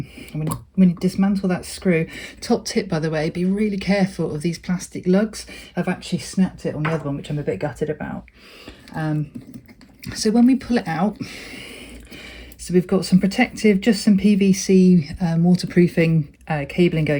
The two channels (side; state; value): both; identical; correlation 1.00